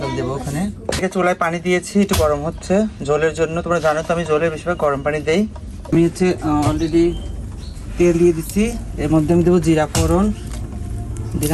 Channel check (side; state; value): both; identical; correlation 1.00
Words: দেবো ওখানে। চুলায় পানি দিয়েছি, একটু গরম হচ্ছে ঝোলের জন্য। তোমরা জানো তো আমি ঝোলের বেশিরভাগ গরম পানি দেই। আমি হচ্ছে অলরেডি তেল দিয়ে দিচ্ছি, এর মধ্যে আমি দেবো জিরা ফোড়ন,